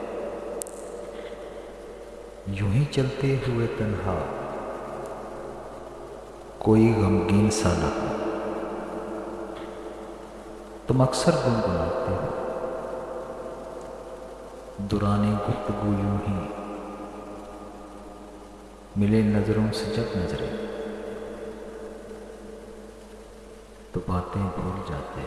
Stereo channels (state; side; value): identical; both; correlation 1.00